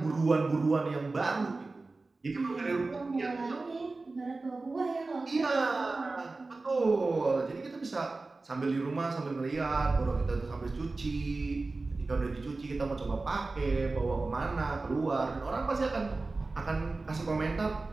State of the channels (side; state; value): left; quieter; 3.5 dB